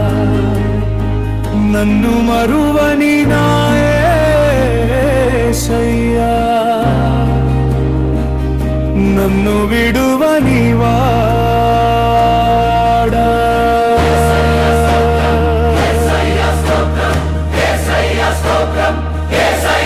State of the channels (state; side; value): identical; both; correlation 1.00